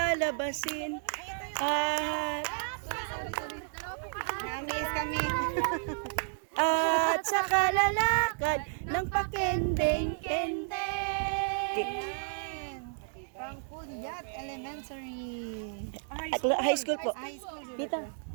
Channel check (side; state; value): left; silent; digital silence